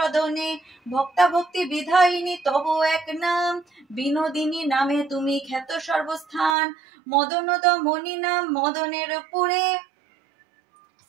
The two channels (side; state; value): left; drops out; at 6.6 s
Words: ভক্তা ভক্তি বিধায়িনী তব এক নাম, বিনোদিনী নামে তুমি খ্যাত সর্বস্থান, মদনদ মণি নাম মদনের পুরে,